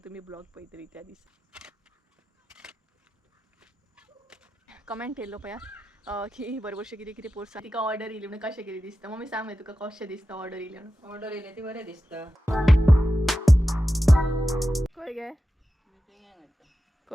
तुम्ही ब्लॉग पळयतली त्या दिसा. कमेंट केल्लो पळया की बरोबरशें कितें कितें पोरसा तिका ऑर्डर येयली म्हणून कशें कितें दिसता. मम्मी सांग मागीर तुका कशें दिसता ऑर्डर येयली म्हणून. ऑर्डर येयले ती बरें दिसता. खंय गे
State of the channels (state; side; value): normal; both; correlation 0.92